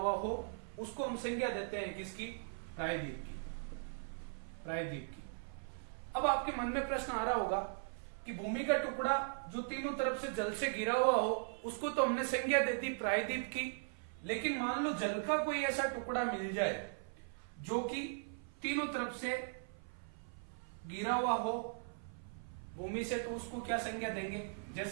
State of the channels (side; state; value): left; silent; 52 dB below the other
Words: हो, उसको हम संज्ञा देते हैं किसकी? प्रायद्वीप की। अब आपके मन में प्रश्न आ रहा होगा कि भूमि का टुकड़ा जो तीनों तरफ से जल से घिरा हुआ हो उसको तो हमने संज्ञा दे दी प्रायद्वीप की, लेकिन मान लो जल का कोई ऐसा टुकड़ा मिल जाए जो कि तीनों तरफ से घिरा हुआ हो भूमि से, तो उसको क्या संज्ञा देंगे?